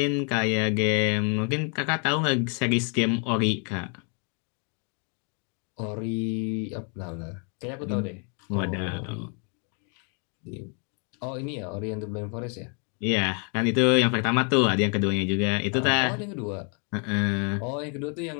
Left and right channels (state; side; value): quieter; right; 38.7 dB